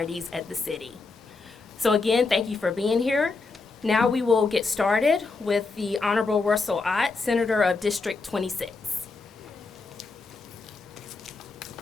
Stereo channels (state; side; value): quieter; right; 4.0 dB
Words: at the city. So again, thank you for being here. Now we will get started with the Honorable Russell Ott, Senator of District 26.